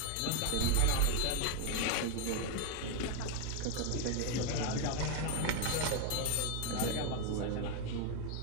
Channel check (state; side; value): different; both; correlation 0.01